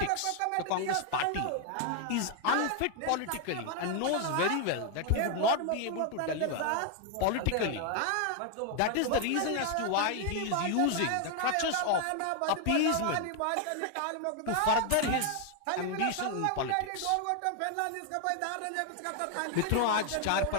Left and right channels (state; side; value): different; both; correlation 0.00